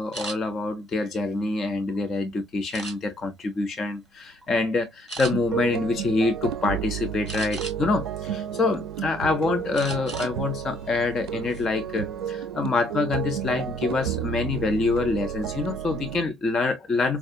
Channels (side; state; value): both; normal; correlation 0.65